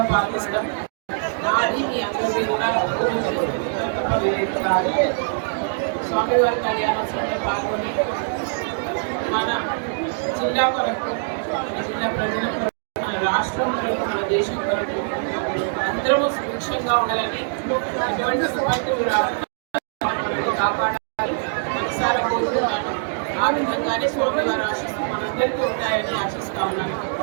పాల్గొనడం నాది మీ అందరికీ కూడా స్వామివారి కళ్యాణోత్సవంలో పాల్గొని మన జిల్లా కొరకు, మన జిల్లా ప్రజల కొరకు, మన రాష్ట్రం కొరకు, మన దేశం కొరకు అందరూ సుభిక్షంగా ఉండాలని, ఎటువంటి విపత్తులు రాకుండా కాపాడాలని మనసారా కోరుతున్నాను. ఆ విధంగానే స్వామివారి ఆశిస్తూ మనందరికీ ఉంటాయని ఆశిస్తా ఉన్నాను.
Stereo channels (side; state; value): left; silent; digital silence